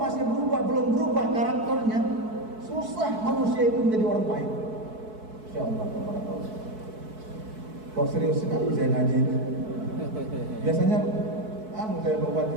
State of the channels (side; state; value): left; late; 4.6 ms